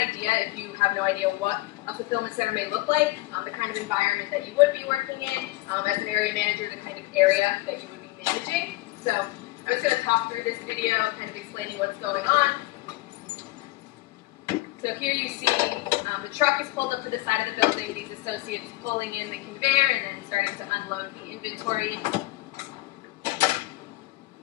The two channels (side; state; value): right; quieter; 19.0 dB